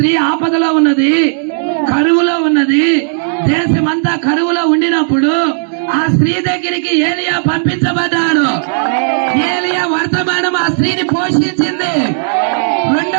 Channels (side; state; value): left; silent; digital silence